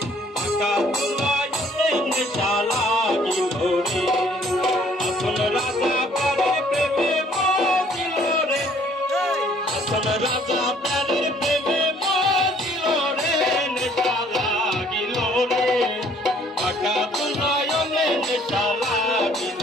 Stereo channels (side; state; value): both; normal; correlation 0.60